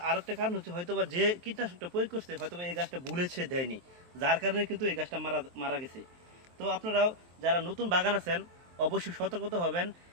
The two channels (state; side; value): late; left; 23 ms